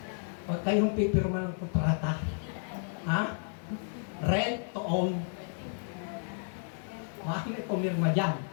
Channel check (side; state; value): right; silent; digital silence